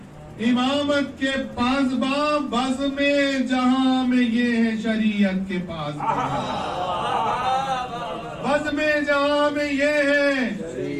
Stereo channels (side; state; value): both; identical; correlation 1.00